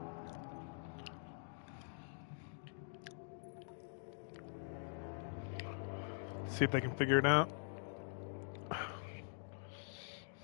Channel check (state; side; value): silent; right; digital silence